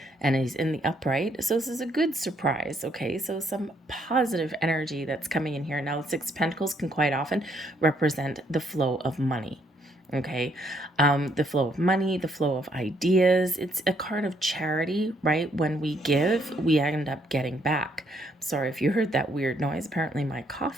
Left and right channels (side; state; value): both; normal; correlation 0.71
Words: And he's in the upright. So this is a good surprise, okay? So some positive energy that's coming in here. Now, the Six of Pentacles can quite often represent the flow of money, okay? The flow of money, the flow of ideas. It's a card of charity, right? When we give, we end up getting back. Sorry if you heard that weird noise. Apparently my